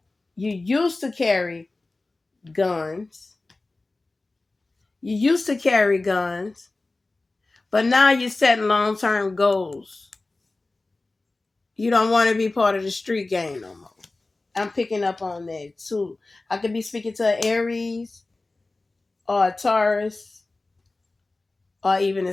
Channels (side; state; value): right; quieter; 3.2 dB